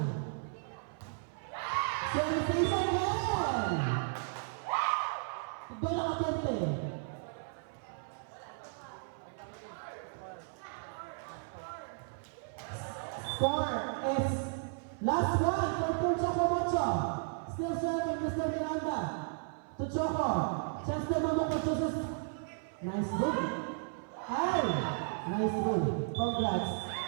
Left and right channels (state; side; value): silent; left; 55 dB below the other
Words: Service again! Doon ang atente. Score is last one for Team Chocomocho. Still serving Mr. Miranda. To Choco. Chance to Mamukot chooses. Nice goal. Ay! Nice goal. Congrats.